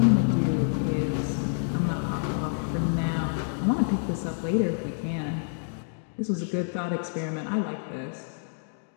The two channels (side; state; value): right; silent; digital silence